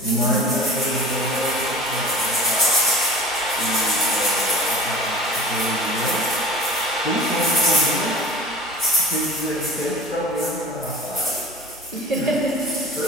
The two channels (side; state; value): both; normal; correlation 0.40